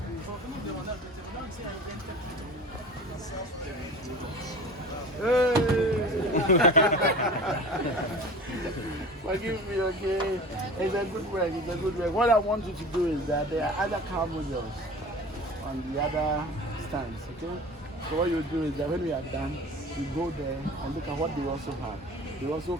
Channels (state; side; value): normal; both; correlation 0.38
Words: Forgive me, okay? It's a good work, it's a good work. What I want you to do is that there are other car models on the other stands, okay? So what you do is that when we are done, you go there and look at what they also have. They also